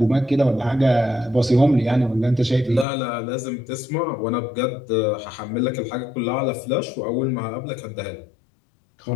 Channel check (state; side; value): drops out; right; at 2.9 s